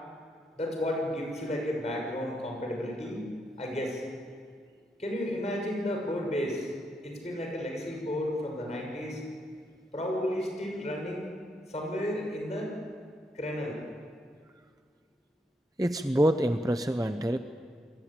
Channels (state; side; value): normal; both; correlation 0.78